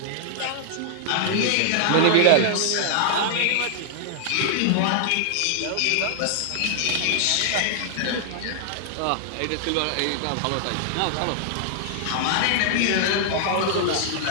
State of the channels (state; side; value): different; both; correlation -0.01